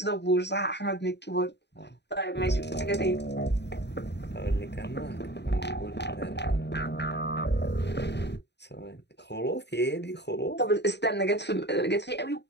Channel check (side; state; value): right; late; 0.50 ms